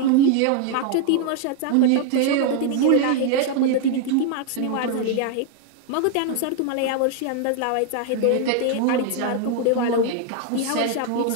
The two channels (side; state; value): both; different; correlation 0.00